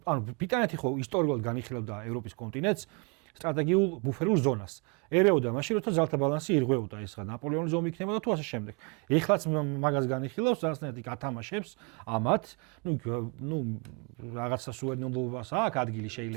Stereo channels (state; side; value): quieter; left; 31.6 dB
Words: ანუ ბრიტანეთი ხო ისტორიულად განიხილავდა ევროპის კონტინენტს სტრატეგიულ ბუფერულ ზონას. ერეოდა მაშინ როცა ძალთა ბალანსი ირღვეოდა, ეს რა ნაპოლეონის ომი იქნებოდა თუ ასე შემდეგ. ეხლაც მაგას განიხილავს, რაღაცნაირად გათამაშებს ამათ, ნუ რაღაცა სუვერენობას აქვს ადგილი შეიძლება.